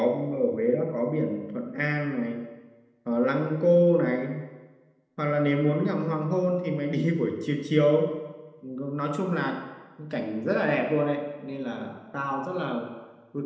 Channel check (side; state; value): both; identical; correlation 1.00